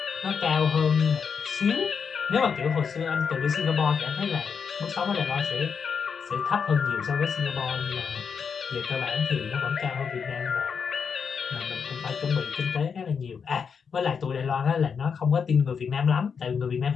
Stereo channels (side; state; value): right; quieter; 6.3 dB